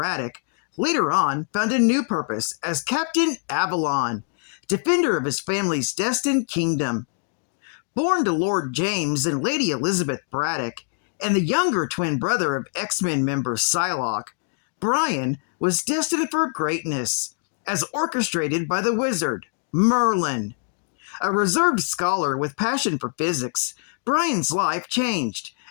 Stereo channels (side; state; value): right; silent; 58 dB below the other